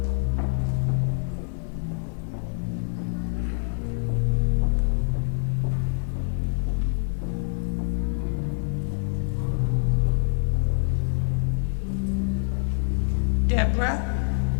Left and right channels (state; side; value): silent; right; 61 dB below the other